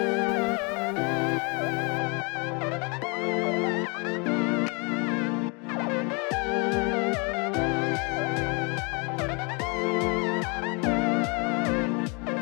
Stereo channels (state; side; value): quieter; right; 31.8 dB